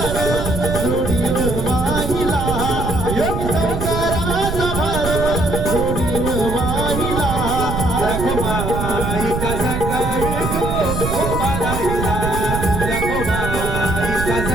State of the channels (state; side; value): noise; right; rumble, 3 dB below the sound